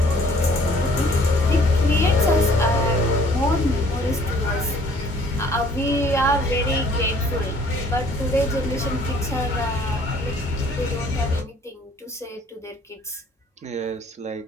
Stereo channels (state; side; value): normal; both; correlation 0.57